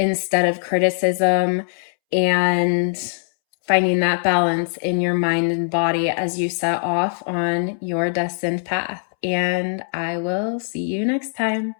of criticism, and finding that balance in your mind and body as you set off on your destined path. And I will see you next time.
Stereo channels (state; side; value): silent; right; 65 dB below the other